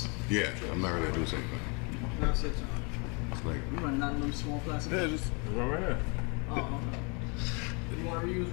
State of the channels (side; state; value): right; quieter; 32.8 dB